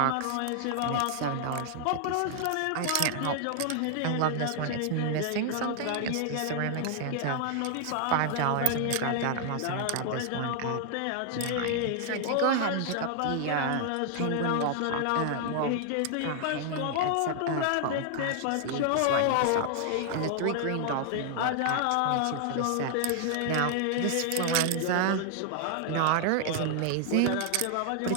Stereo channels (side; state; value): both; different; correlation 0.00